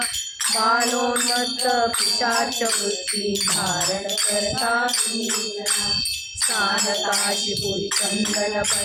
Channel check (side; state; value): both; identical; correlation 1.00